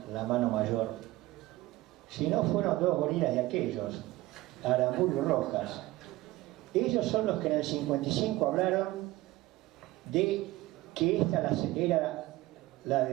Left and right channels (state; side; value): quieter; left; 18.2 dB